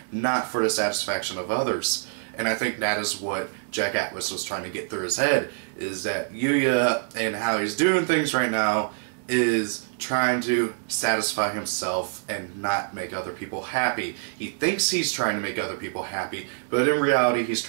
not for the satisfaction of others. And I think that is what Jack Atlas was trying to get through his head, is that Yuya and how he's doing things right now is trying to satisfy himself and not make other people happy. He thinks he's trying to make other people happy, but in reality he's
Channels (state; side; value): silent; left; digital silence